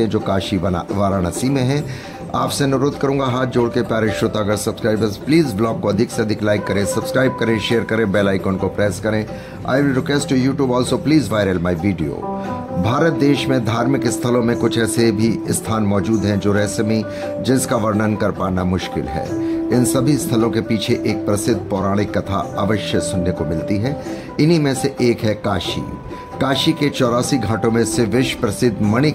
हैं, जो काशी वाराणसी में है। आपसे अनुरोध करूंगा हाथ जोड़ के प्यारे श्रोतागण सब्सक्राइबर्स, प्लीज ब्लॉग को अधिक से अधिक लाइक करें, सब्सक्राइब करें, शेयर करें, बेल आइकन को प्रेस करें। I will request to YouTube also please viral my video. Bharat देश में धार्मिक स्थलों में कुछ ऐसे भी स्थान मौजूद हैं जो रहस्यमयी, जिसका वर्णन कर पाना मुश्किल है। इन सभी स्थलों के पीछे एक प्रसिद्ध पौराणिक कथा अवश्य सुनने को मिलती है। इन्हीं में से एक है काशी। काशी के 84 घाटों में से विश्व प्रसिद्ध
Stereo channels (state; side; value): identical; both; correlation 1.00